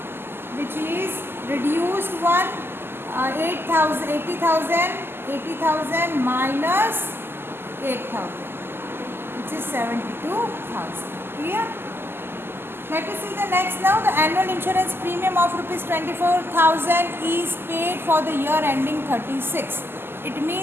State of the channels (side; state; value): left; late; 0.11 ms